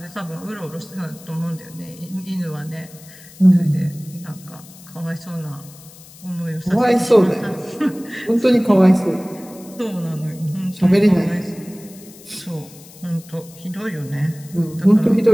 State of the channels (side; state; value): left; noise; hiss, 21 dB below the sound